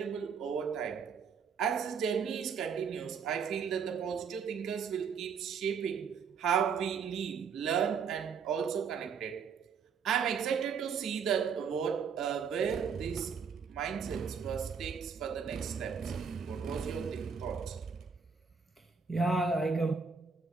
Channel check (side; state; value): left; quieter; 6.3 dB